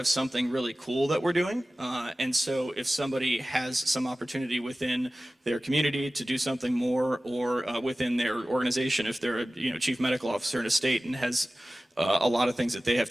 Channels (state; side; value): normal; both; correlation 0.96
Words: something really cool that we're doing. And so if somebody has some opportunity within their community to do something more, or within their organization, if they're a chief medical officer in a state and has a lot of things that they have